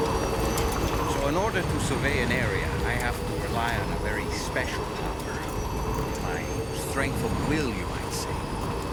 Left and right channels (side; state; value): both; identical; correlation 1.00